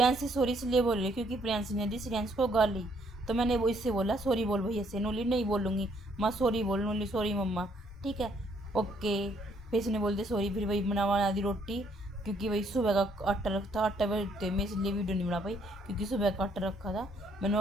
सॉरी इसलिए बोल रही क्योंकि प्रियांशी ने दी श्रेयांश को गाली, तो मैंने वो इससे बोला सॉरी बोल भैया से, नूली नहीं बोलूँगी माँ सॉरी बोल, नूली सॉरी मम्मा, ठीक है ओके। फिर इसने बोल दिया सॉरी, फिर वही बना दी रोटी, क्योंकि वही सुबह का आटा रखा, आटा बैठते मैं इसलिए वीडियो नहीं बना पाई क्योंकि सुबह का आटा रखा था,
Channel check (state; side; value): normal; both; correlation 0.68